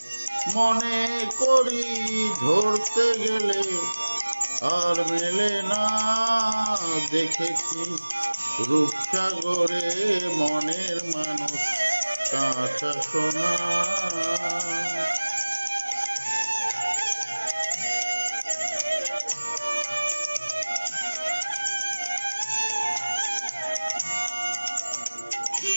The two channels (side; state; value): both; inverted; correlation -1.00